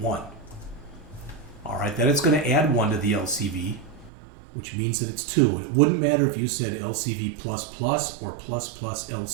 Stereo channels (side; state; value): left; drops out; at 4.1 s